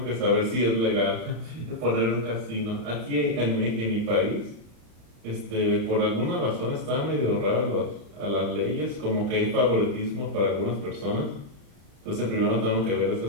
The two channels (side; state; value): left; late; 35 ms